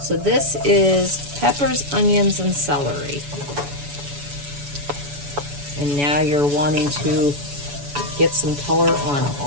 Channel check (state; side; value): late; left; 7.0 ms